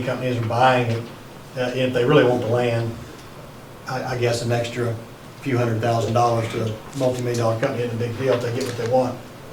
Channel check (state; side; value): identical; both; correlation 1.00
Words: companies are buying it. If they really want the land, I guess an extra few $100,000 to a multi-million-dollar company isn't a big deal if they get what they want.